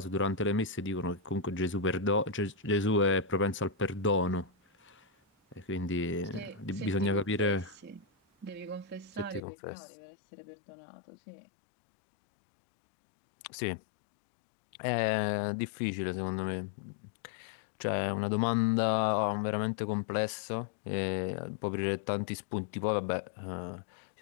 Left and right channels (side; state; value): right; drops out; at 9.5 s